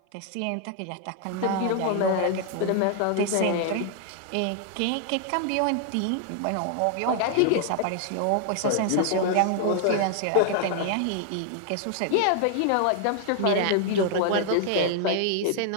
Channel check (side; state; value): both; different; correlation 0.00